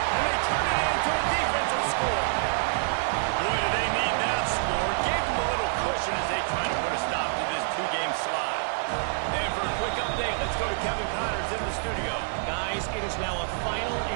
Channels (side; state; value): left; silent; 60 dB below the other